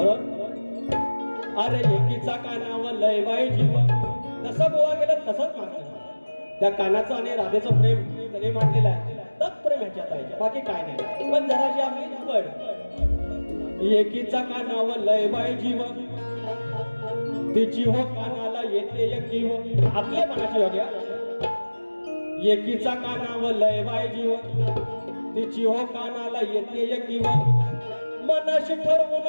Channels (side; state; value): both; inverted; correlation -1.00